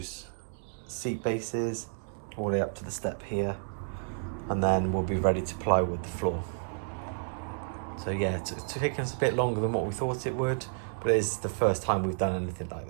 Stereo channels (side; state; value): left; silent; digital silence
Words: seat bases all the way up to the step here, and then we'll be ready to plywood the floor. So yeah, it's taken us a bit longer than what we thought it would, but it is the first time we've done anything like